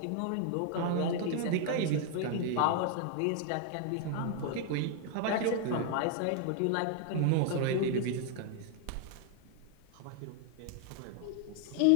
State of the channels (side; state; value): both; different; correlation 0.00